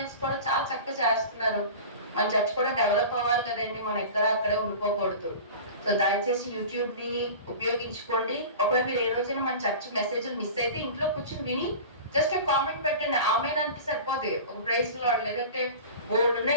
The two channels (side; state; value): both; inverted; correlation -0.35